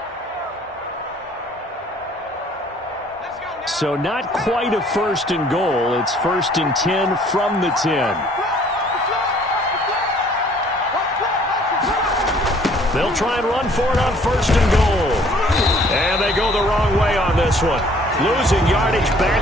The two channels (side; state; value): both; normal; correlation 0.58